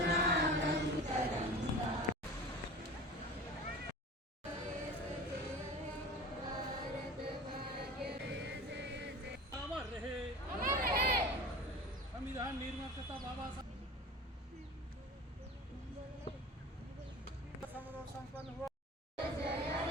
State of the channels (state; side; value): normal; both; correlation 0.36